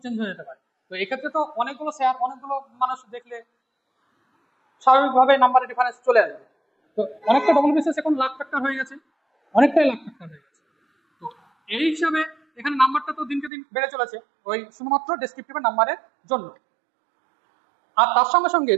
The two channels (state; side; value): drops out; left; at 13.5 s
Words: চেঞ্জ হয়ে যেতে পারে। তো এক্ষেত্রে তো অনেকগুলো মানুষ দেখলে স্বাভাবিকভাবে নাম্বারের ডিফারেন্স চলে আসবে। তো অনেকটা ডবল বিসিএস এখন লাখ ফ্যাক্টর হয়ে গেছে, অনেকটাই লাখ ফ্যাক্টর হয়ে গেছে। তো এই হিসাবে এখানে নাম্বারটা তো দিনকে দিন বেড়ে চলেছে ওই শুধুমাত্র ডেসক্রিপটিভের নাম্বারের জন্য। আর তার সঙ্গে সঙ্গে